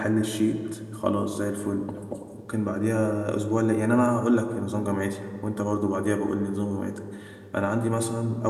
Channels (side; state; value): both; identical; correlation 1.00